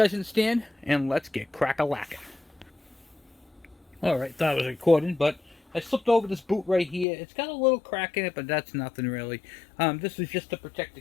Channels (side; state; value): right; drops out; at 7.1 s